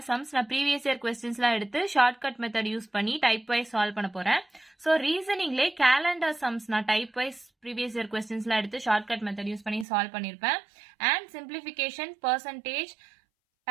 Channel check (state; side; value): drops out; left; at 9.9 s